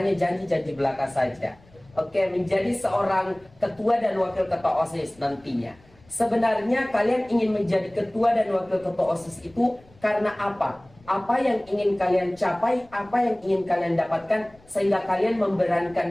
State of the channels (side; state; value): left; noise; rumble, 28 dB below the sound